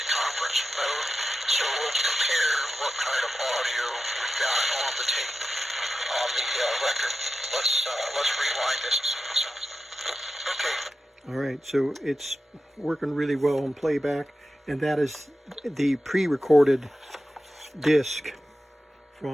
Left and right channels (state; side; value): normal; both; correlation 0.91